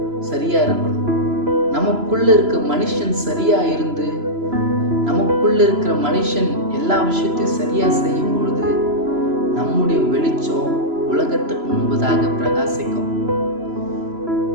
சரியா இருக்கணும். நமக்குள்ள இருக்க மனுஷன் சரியா இருந்து நமக்குள்ள இருக்கிற மனுஷன் எல்லா விஷயத்தையும் சரியா செய்யும் பொழுது நம்முடைய வெளிச்சம் உலகத்துக்கு முன்பதாக பிரகாசிக்கும்.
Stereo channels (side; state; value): left; late; 3.0 ms